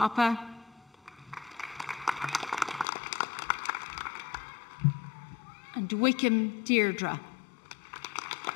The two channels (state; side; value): drops out; right; at 2.9 s